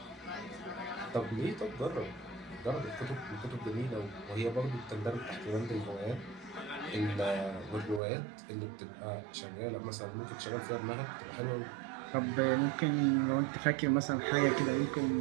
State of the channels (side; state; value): left; drops out; at 8.0 s